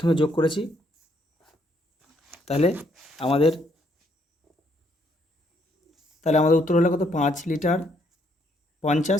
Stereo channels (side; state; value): both; normal; correlation 0.71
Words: যোগ করেছি, তাহলে আমাদের উত্তর হলো কত, 5 লিটার